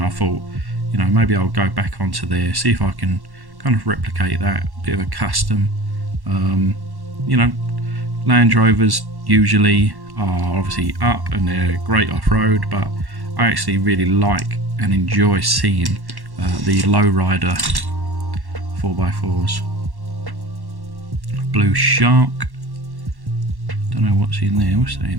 I thought, you know, maybe I'll go back onto there, see if I can kind of replicate that, bit of a custom. You know, Land Rovers usually are obviously up and they're great off-road, but I actually really like and enjoy seeing the lowrider 4x4s. Blue Shark. Don't know what's in there. What's that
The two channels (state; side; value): late; left; 1.1 ms